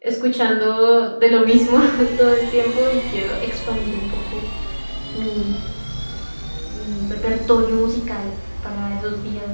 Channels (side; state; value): both; inverted; correlation -1.00